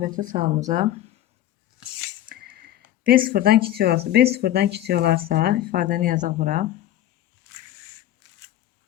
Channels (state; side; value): quieter; right; 13.0 dB